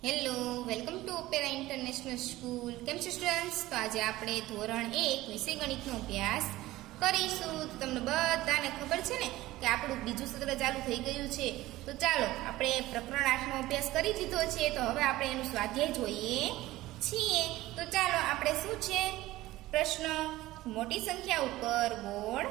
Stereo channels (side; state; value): left; quieter; 17.2 dB